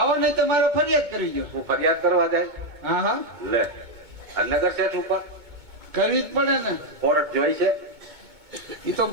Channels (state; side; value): late; left; 2.2 ms